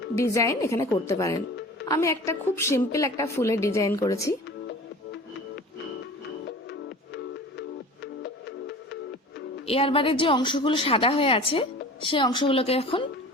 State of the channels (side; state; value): both; normal; correlation 0.40